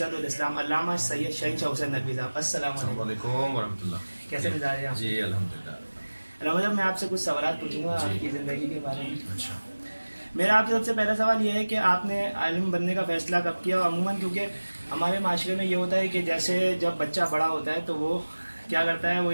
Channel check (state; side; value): inverted; both; correlation -1.00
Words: الاسلام علامہ سید شہنشاہ حسین ندوی صاحب. السلام علیکم ورحمۃ اللہ. کیسے مزاج ہیں آپ؟ جی الحمدللہ. رحمت صاحب میں آپ سے کچھ سوالات پوچھوں گا آپ کی زندگی کے بارے میں. اچھا. میرا آپ سے سب سے پہلا سوال یہ ہے کہ آپ نے عالم بننے کا فیصلہ کب کیا؟ عموماً کیونکہ ہمارے معاشرے میں یہ ہوتا ہے کہ جیسے جب بچہ بڑا ہوتا ہے تو وہ کیا کرتا ہے، وہ